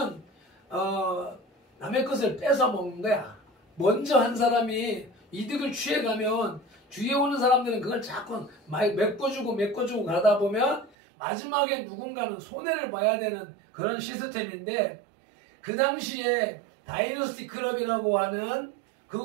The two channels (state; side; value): drops out; left; at 10.9 s